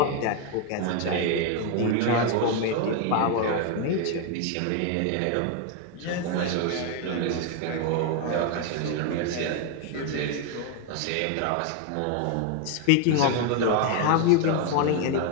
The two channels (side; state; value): both; different; correlation 0.01